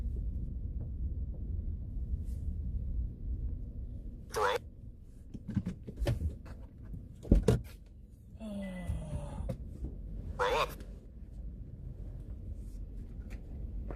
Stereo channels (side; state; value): both; identical; correlation 1.00